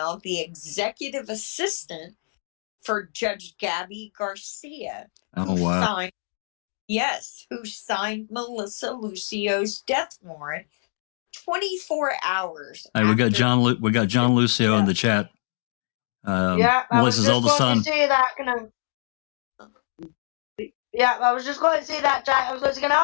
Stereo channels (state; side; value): silent; right; digital silence